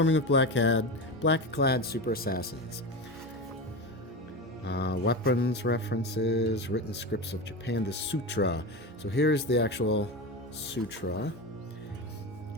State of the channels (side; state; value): both; normal; correlation 0.22